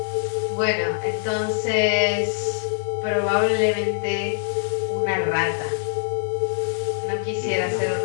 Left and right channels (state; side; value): silent; right; 63 dB below the other